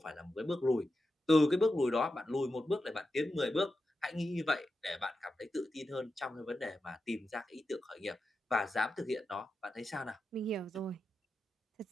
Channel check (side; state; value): both; normal; correlation 0.90